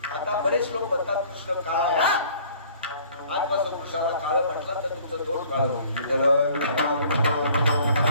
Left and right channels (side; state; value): both; inverted; correlation -0.54